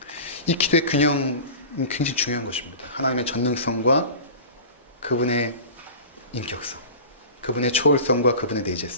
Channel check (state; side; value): inverted; both; correlation -0.34